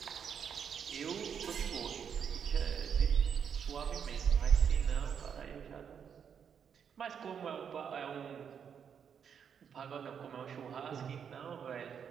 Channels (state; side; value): quieter; left; 7.5 dB